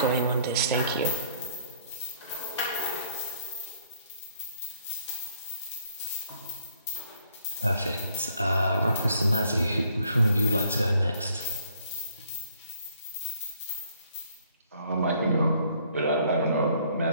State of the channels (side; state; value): both; inverted; correlation -0.64